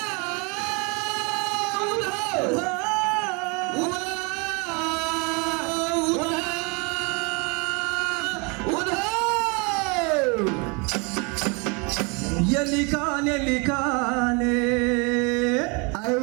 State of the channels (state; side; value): quieter; left; 31.2 dB